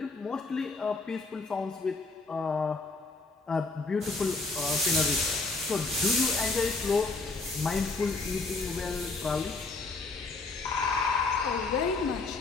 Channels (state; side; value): quieter; right; 3.7 dB